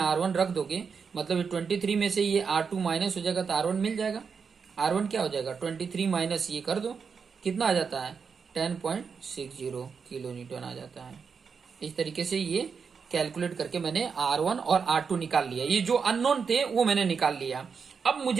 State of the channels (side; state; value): left; quieter; 5.9 dB